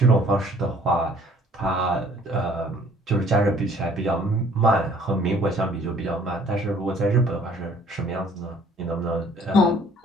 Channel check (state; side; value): normal; both; correlation 0.57